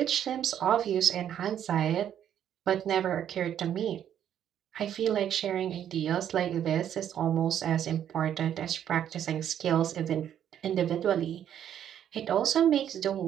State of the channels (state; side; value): quieter; left; 9.9 dB